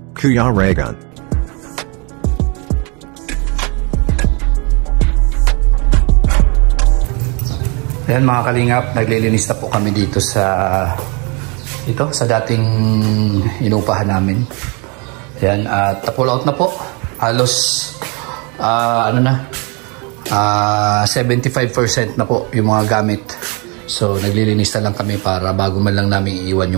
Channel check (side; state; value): left; quieter; 31.8 dB